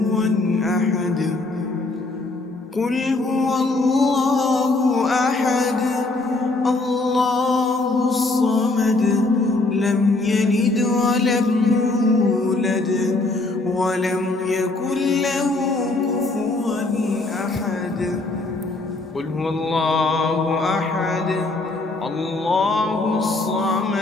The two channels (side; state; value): right; quieter; 3.2 dB